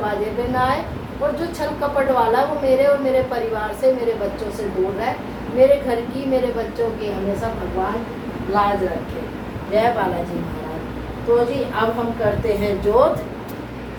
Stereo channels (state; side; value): identical; both; correlation 1.00